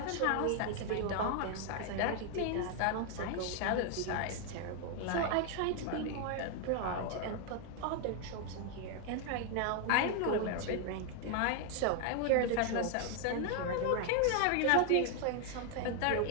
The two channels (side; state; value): both; different; correlation 0.00